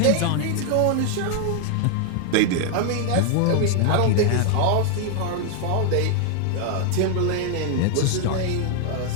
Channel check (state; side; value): different; both; correlation 0.00